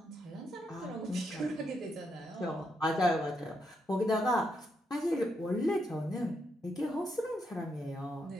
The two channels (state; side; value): normal; both; correlation 0.80